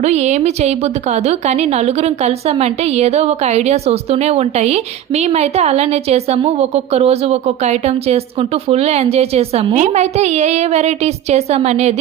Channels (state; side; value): quieter; left; 11.0 dB